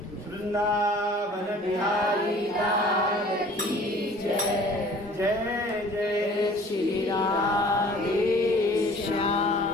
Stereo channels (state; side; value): normal; both; correlation 0.50